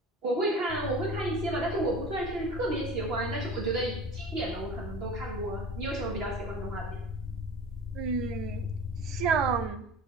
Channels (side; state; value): both; normal; correlation 0.38